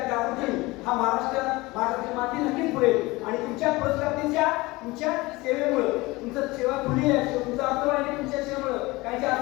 जागृतीतून हा महाराष्ट्राची माती नक्कीच पुढेल आणि तुमच्या पुरस्कारांच्या तुमच्या सेवेमुळे तुमचं सेवा पुढे आहे तुमचं अर्थवाणी तुमच्या सेवेमुळे काहीच्या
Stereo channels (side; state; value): right; quieter; 21.8 dB